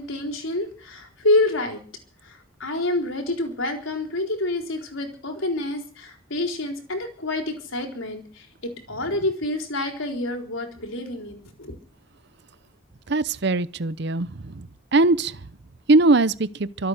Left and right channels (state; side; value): normal; both; correlation 0.12